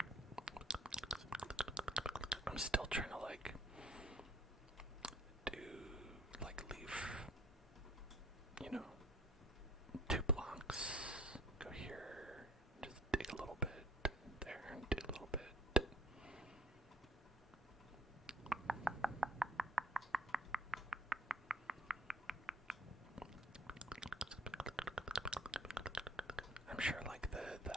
I'm still trying to leave, 2 blocks, go here, just dig a little bit, there, and dig a little bit. I'm sure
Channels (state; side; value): normal; both; correlation 0.57